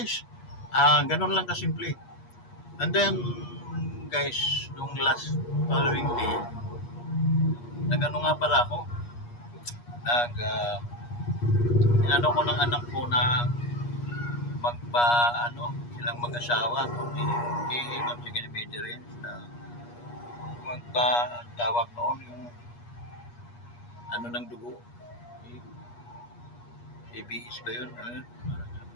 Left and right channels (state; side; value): late; right; 8.4 ms